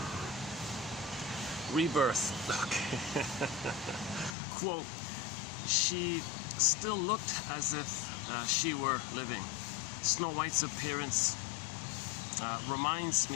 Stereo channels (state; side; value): drops out; right; at 4.4 s